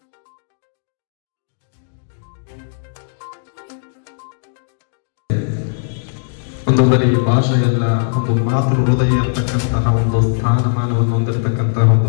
ಒಂದು ಬರೀ ಭಾಷೆಯಲ್ಲ, ಒಂದು ಮಾತೃ ಹೃದಯ ಇರತಕ್ಕಂತಹ ಒಂದು ಸ್ಥಾನಮಾನವನ್ನು ಹೊಂದಿರತಕ್ಕಂತಹ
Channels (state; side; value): silent; right; digital silence